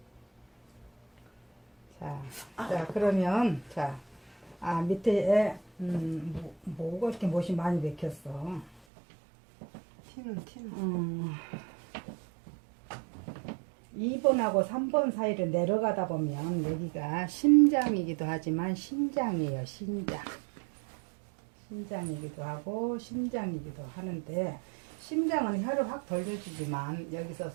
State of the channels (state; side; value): drops out; left; at 8.7 s